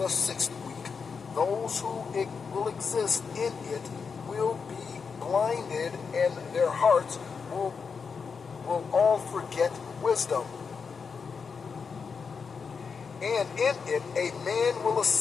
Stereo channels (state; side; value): quieter; right; 5.6 dB